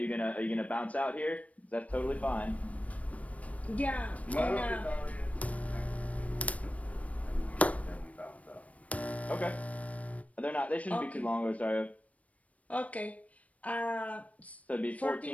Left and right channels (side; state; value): right; late; 0.066 ms